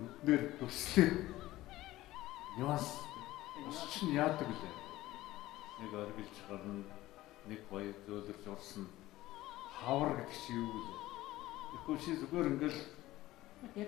төслөө. Нюанс чинь яадаг лээ. Нэг оргилж гарна, нэг гоё зөөлрж урсна. Хавар гэдэг чи юу вэ? Тэгэхгүй чи зүгээр ингээл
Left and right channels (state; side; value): quieter; right; 16.7 dB